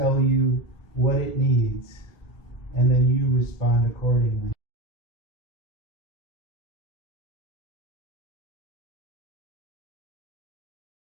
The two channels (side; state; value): right; late; 1.6 ms